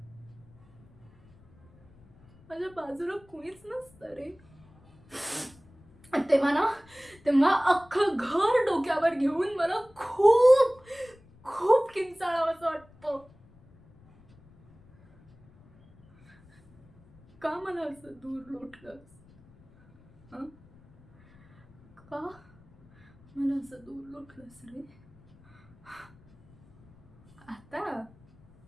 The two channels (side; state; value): left; noise; rumble, 27 dB below the sound